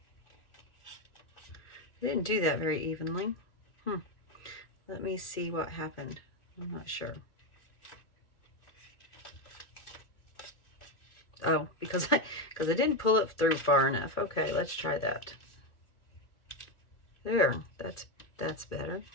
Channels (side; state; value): right; late; 2.7 ms